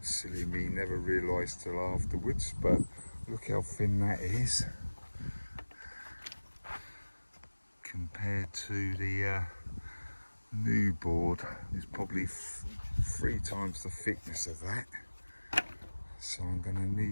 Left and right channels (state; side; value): inverted; both; correlation -1.00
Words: silly me, never realised till afterwards, but look how thin that is compared to the new board. It's probably 3 times the thickness of that. So I'm going to